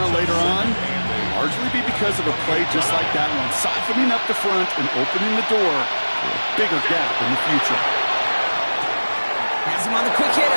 later on, it'll largely be because of a play just like that one, softening up the front and opening the door for a bigger gap in the future. Has him on the quick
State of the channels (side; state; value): both; inverted; correlation -1.00